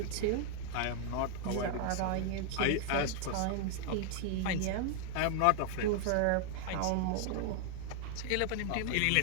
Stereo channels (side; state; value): both; different; correlation 0.00